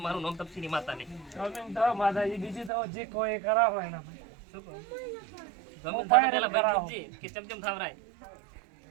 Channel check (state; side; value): drops out; left; at 2.7 s